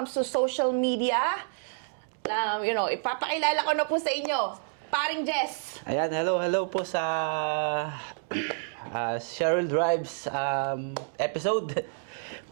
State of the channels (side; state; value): left; silent; digital silence